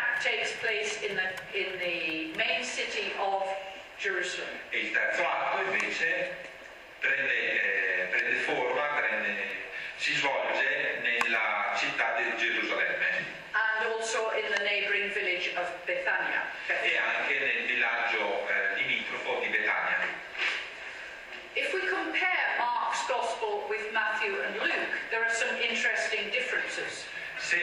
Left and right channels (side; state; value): both; identical; correlation 1.00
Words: takes place in the main city of Jerusalem. E il terzo atto invece prende forma, si svolge nella città di Gerusalemme. And also in the neighboring village of Bethania. E anche nel villaggio limitrofo di Betania. If we compare Mark's Gospel with Matthew and Luke, there are some interesting differences.